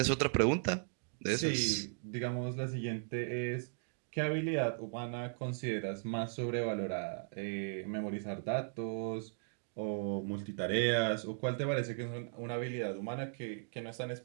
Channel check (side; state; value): left; silent; digital silence